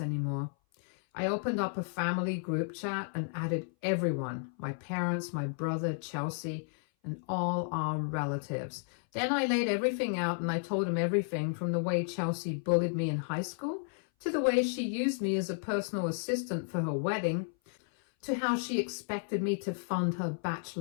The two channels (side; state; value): right; silent; 56 dB below the other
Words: I opened up a family group chat and added everyone, my parents, my brother, Chelsea, and all our relatives. Then I laid everything out, and I told him everything from the way Chelsea bullied me in high school to the way she used me as a personal assistant for her wedding, to how she expected me to fund her